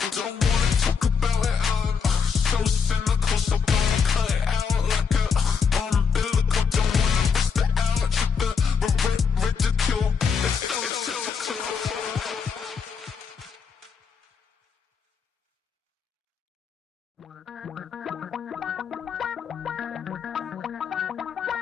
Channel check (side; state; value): right; quieter; 6.0 dB